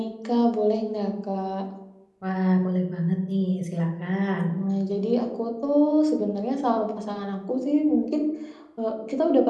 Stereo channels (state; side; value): identical; both; correlation 1.00